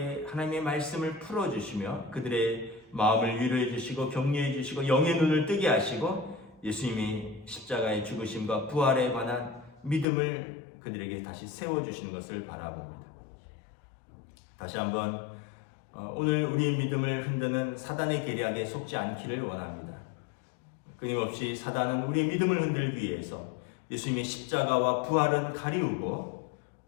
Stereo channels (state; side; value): drops out; right; at 10.1 s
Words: 하나님의 말씀을 풀어주시며 그들의 마음을 위로해 주시고 격려해 주시고 영의 눈을 뜨게 하시고 예수님이 십자가의 죽으심과 부활에 관한 믿음을 그들에게 다시 세워주시는 것을 바라봅니다. 다시 한번 오늘 우리의 믿음을 흔드는 사단의 계략에 속지 않기를 원합니다. 끊임없이 사단은 우리의 믿음을 흔들기 위해서 예수님의 십자가와 부활은 가리우고